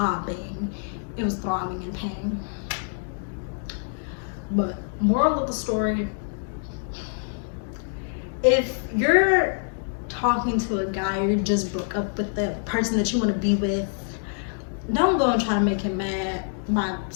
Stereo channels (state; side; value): silent; right; digital silence